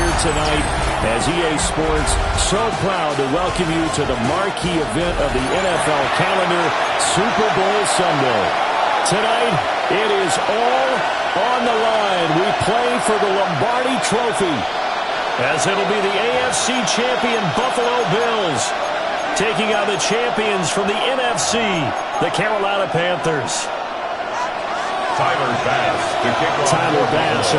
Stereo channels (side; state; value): both; identical; correlation 1.00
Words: tonight as EA Sports so proud to welcome you to the marquee event of the NFL calendar, Super Bowl Sunday. Tonight, it is all on the line. We play for the Lombardi Trophy, as it'll be the AFC champion Buffalo Bills taking on the champions from the NFC, the Carolina Panthers. Tyler Bass